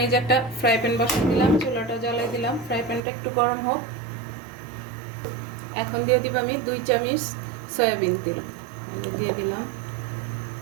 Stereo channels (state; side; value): drops out; left; at 3.0 s